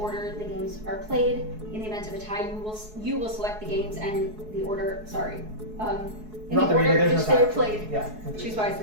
the games are played. In the event of a tie, you will select the games and the order. Sorry. In Not the the reader, order there's which no they are time. played. Yeah. Choose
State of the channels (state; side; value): late; left; 4.7 ms